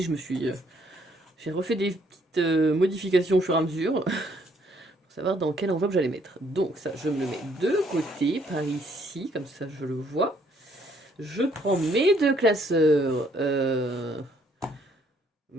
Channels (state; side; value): normal; both; correlation 0.67